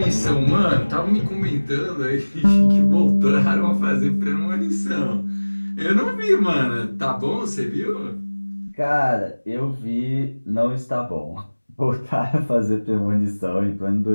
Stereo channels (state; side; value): inverted; both; correlation -1.00